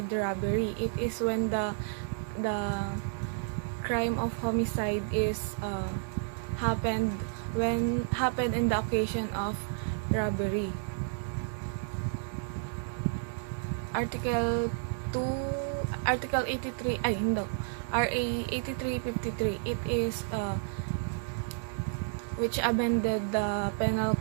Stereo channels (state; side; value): silent; left; digital silence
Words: robbery, it is when the crime of homicide is happened in the occasion of robbery. Article 83 RA 8353, it is which amended the penal